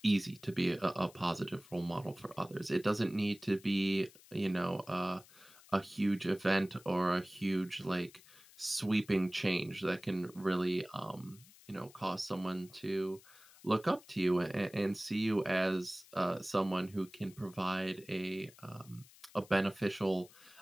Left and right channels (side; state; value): left; noise; hiss, 23 dB below the sound